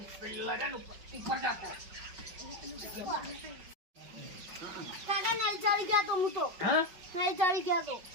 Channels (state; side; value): late; left; 5.4 ms